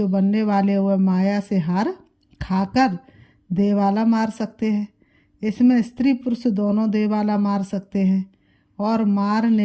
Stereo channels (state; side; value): identical; both; correlation 1.00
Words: बनने वाले हुए माया से हार खाकर देवाला मार सकते हैं। इसमें स्त्री पुरुष दोनों देवाला मार सकते हैं। और